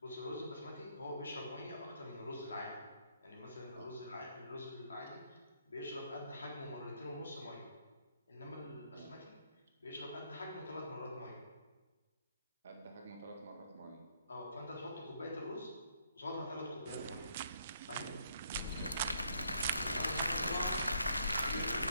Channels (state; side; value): inverted; both; correlation -0.70